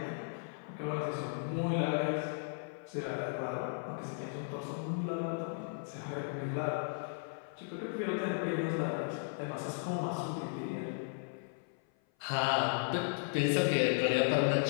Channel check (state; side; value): silent; right; 54 dB below the other